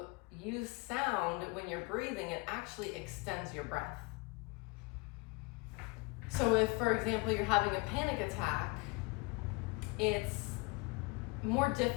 use sound, when you're breathing, it actually extends your breath. So if, for example, you're having a panic attack, it's more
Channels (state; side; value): quieter; right; 26.9 dB